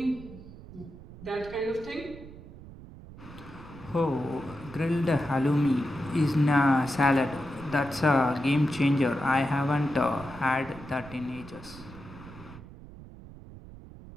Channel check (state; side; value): noise; right; rumble, 16 dB below the sound